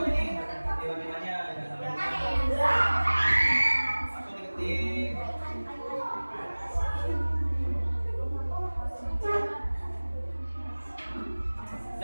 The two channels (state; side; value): inverted; both; correlation -1.00